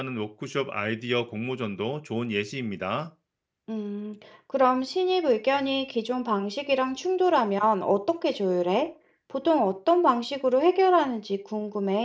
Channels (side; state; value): both; identical; correlation 1.00